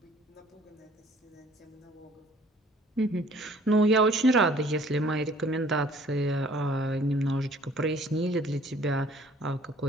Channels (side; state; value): both; normal; correlation 0.56